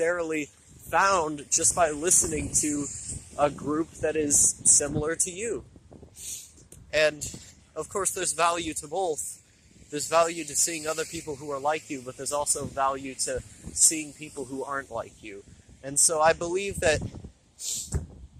found just by listening to a group that is similar to you. And of course, there's value to both. There's value to seeing other people who are like you, but there's also value to seeing people who aren't like you. And so I believe that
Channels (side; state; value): both; identical; correlation 1.00